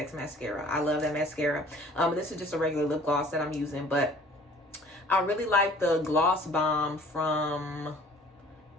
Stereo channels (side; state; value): both; normal; correlation 0.51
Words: mascara. I love that mascara. This is just a regular lip gloss that I'm using, but I really like the Gloss Bomb from